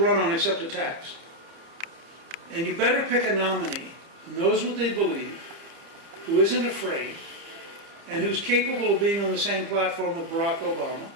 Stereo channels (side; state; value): left; late; 30 ms